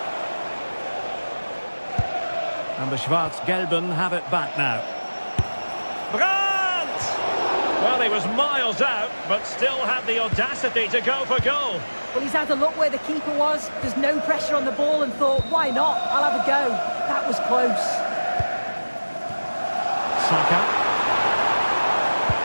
And the Schwarz-Gelben have it back now. Brandt! Well, he was miles out, but still had the audacity to go for goal. Well, he's had a look where the keeper was. There's no pressure on the ball and thought, why not? I'll have a go. That was close. Saka.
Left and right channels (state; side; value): inverted; both; correlation -1.00